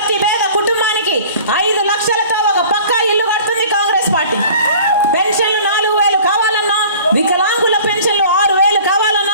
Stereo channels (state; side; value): inverted; both; correlation -0.46